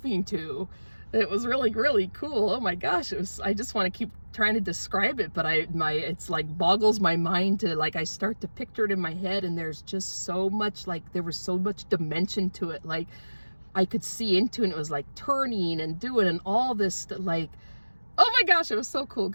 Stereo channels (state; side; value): inverted; both; correlation -1.00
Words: to. It was really, really cool. Oh my gosh, I just want to keep trying to describe it, but it's like boggles my mind to like, I start to picture it in my head, and there's just so much, like there was so much dimension to it. Like I could see into it, and it was like turning and doing and all this, like, oh my gosh, it was so cool,